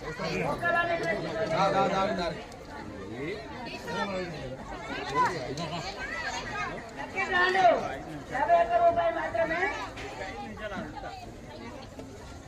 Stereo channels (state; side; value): identical; both; correlation 1.00